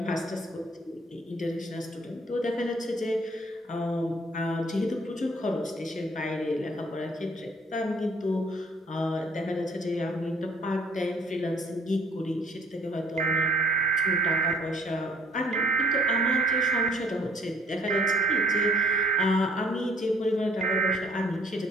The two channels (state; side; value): normal; both; correlation 0.59